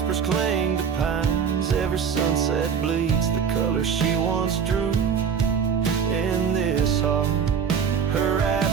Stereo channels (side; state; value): left; quieter; 6.9 dB